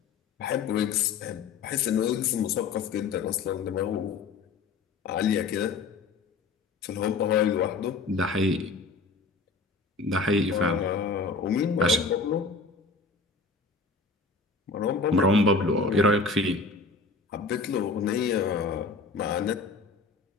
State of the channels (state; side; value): quieter; right; 4.1 dB